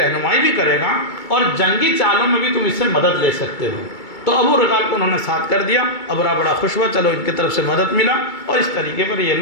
بھی کرے گا، اور جنگی چالوں میں بھی تم اس سے مدد لے سکتے ہو۔ تو ابو رغال کو انہوں نے ساتھ کر دیا، ابرہہ بڑا خوش ہوا، چلو ان کی طرف سے مدد ملا، اور اس طریقے پر یہ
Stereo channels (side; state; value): right; late; 2.3 ms